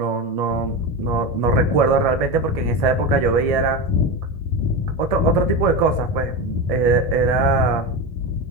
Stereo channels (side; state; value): right; late; 1.7 ms